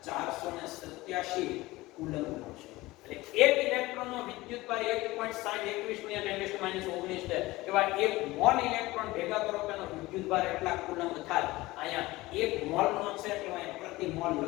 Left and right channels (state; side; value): quieter; right; 19.5 dB